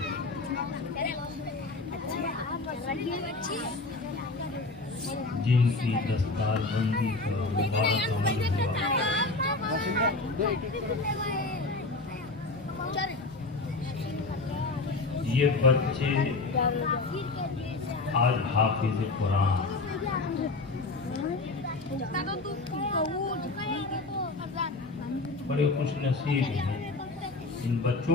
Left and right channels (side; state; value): right; quieter; 3.4 dB